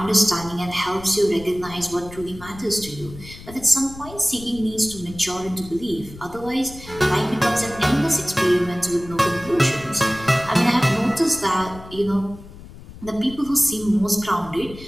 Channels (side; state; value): left; noise; rumble, 16 dB below the sound